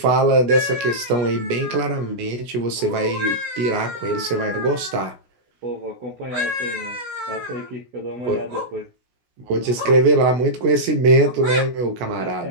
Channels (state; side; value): late; left; 16 ms